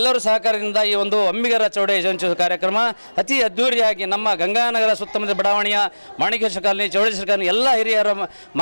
ಸಹಕಾರದಿಂದ ಈ ಒಂದು ಅಂಬಿಗರ ಚೌಡಯ್ಯ ಜಯಂತ್ಯುತ್ಸವ ಕಾರ್ಯಕ್ರಮ ಅತಿ ಅದ್ದೂರಿಯಾಗಿ ನಮ್ಮ ಗಂಗಾನಗರ ಸುತ್ತಮುತ್ತ ಬಡಾವಣೆಯ ಮಾಣಿಕೇಶ್ವರ ಕಾಲನಿ, ಚೌಡೇಶ್ವರ ಕಾಲನಿ ಎಲ್ಲ ಹಿರಿಯರ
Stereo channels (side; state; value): both; inverted; correlation -1.00